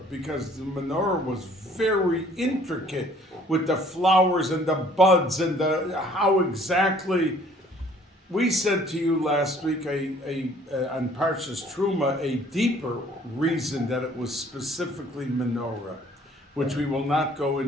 because the menorah was very intricate with the flowers and the buds and how exactly. We said to you last week on Parshas Truma a deeper reason that it was specifically menorah, which we will not go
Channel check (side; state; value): both; normal; correlation 0.57